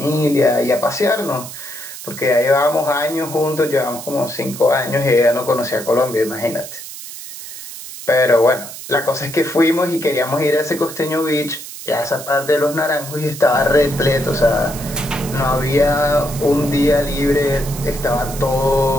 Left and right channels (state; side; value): noise; right; hiss, 12 dB below the sound